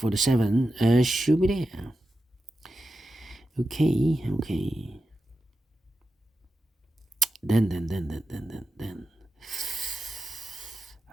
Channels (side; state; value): both; normal; correlation 0.91